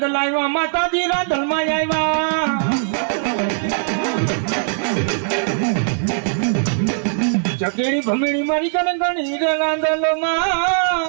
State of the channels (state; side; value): silent; left; digital silence